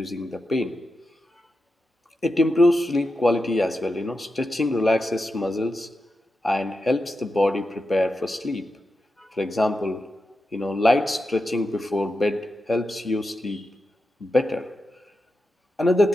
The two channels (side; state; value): both; normal; correlation 0.89